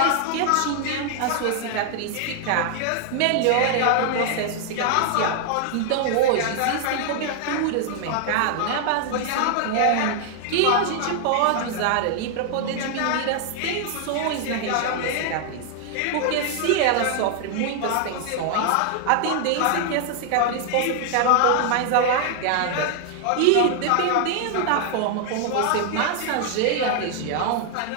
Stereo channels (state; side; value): different; both; correlation 0.00